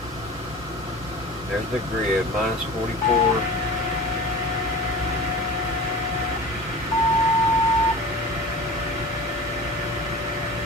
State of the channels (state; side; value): normal; both; correlation 0.38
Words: There's the grid, minus 44.